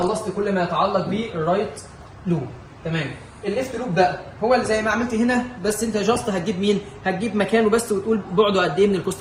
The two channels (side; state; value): both; identical; correlation 1.00